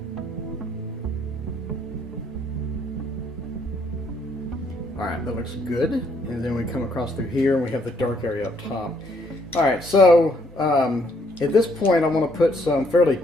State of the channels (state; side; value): normal; both; correlation 0.68